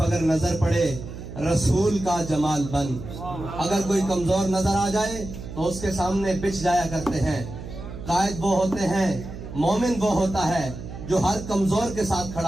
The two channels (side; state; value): right; noise; hum, 11 dB below the sound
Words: اگر نظر پڑے رسول کا جمال بن. اگر کوئی کمزور نظر آ جائے تو اس کے سامنے بچ جایا کرتے ہیں. قائد وہ ہوتے ہیں، مومن وہ ہوتا ہے جو ہر کمزور کے ساتھ